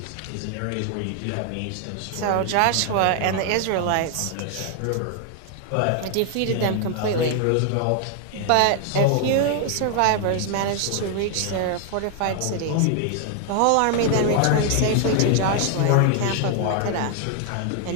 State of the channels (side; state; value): both; different; correlation 0.00